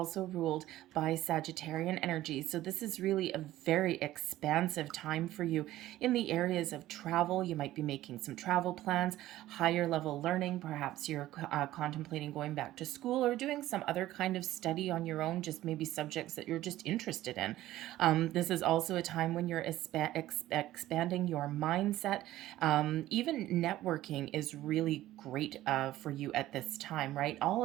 ruled by Sagittarian energy. So this is really a very expansive time for you in the areas of travel. You might be making some travel plans, higher level learning. Perhaps you're contemplating going back to school or doing some other kind of study on your own, just maybe subjects that you're just interested in. This is also a time when you're expanding your mindset. Even networking is really great for you at this time, right? All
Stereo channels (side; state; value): left; quieter; 15.0 dB